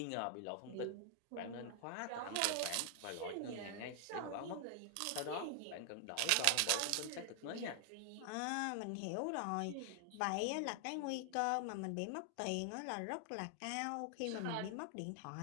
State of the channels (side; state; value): both; different; correlation 0.00